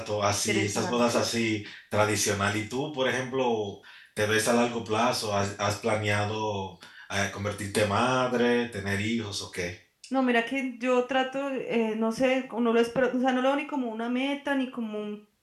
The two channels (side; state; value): both; identical; correlation 1.00